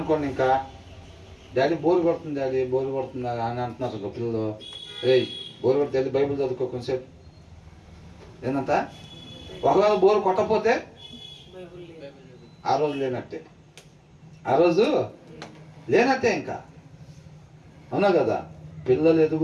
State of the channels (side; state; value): both; identical; correlation 1.00